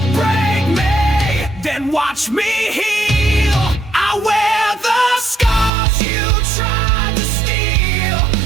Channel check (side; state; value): left; drops out; at 5.7 s